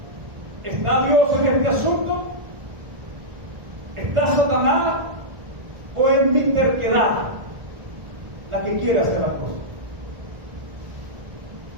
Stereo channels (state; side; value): late; left; 1.4 ms